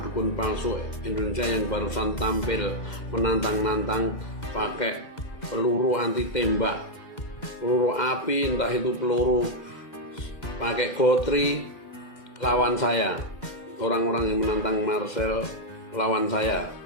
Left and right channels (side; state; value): right; late; 2.1 ms